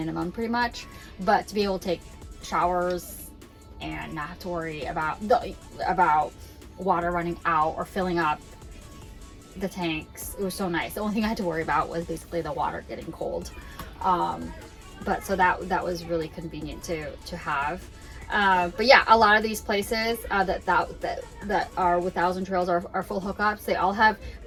pretty much. But to be able to take showers and not have to worry about water running out or filling up the tanks, it was so nice. The only thing I had to worry about was basically the water getting cold. But so that was really convenient to have. But yeah, a lot of these places that are with Thousand Trails are full hookups. They all have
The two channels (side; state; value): both; identical; correlation 1.00